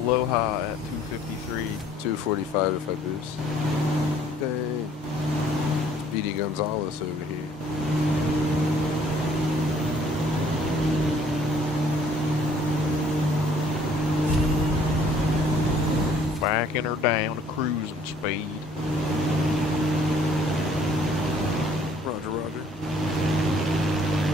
at 253. 245 if I boost. Dang. Speedy Gonzalez over here. Backing her down to cruising speed. Roger, roger.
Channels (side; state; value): both; normal; correlation 0.59